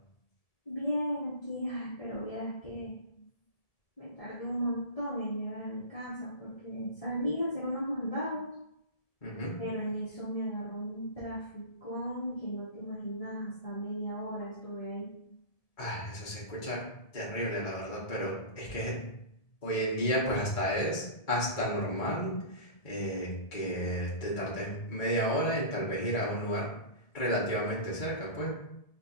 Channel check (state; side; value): late; right; 1.7 ms